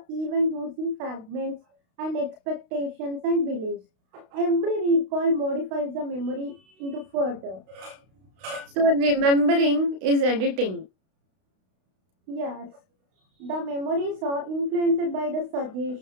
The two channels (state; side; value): late; left; 32 ms